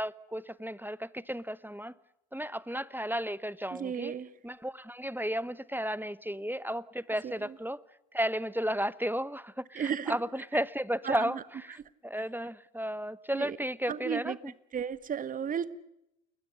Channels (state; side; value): normal; both; correlation 0.75